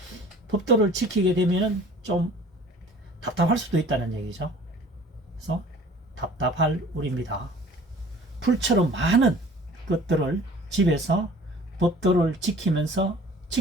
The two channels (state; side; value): normal; both; correlation 0.48